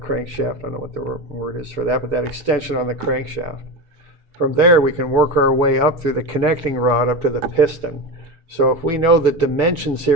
I don't know what the word is for that, but that extension on the crankshaft. From there, we can work our way up through the connecting rod up to the piston. So if we know the dimensions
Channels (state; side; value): late; left; 6.7 ms